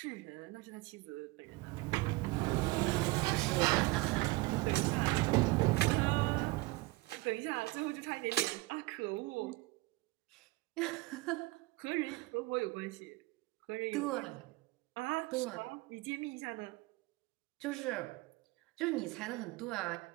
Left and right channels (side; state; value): left; quieter; 21.8 dB